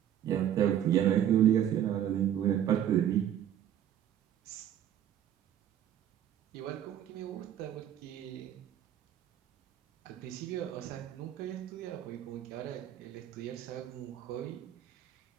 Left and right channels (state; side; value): quieter; left; 10.5 dB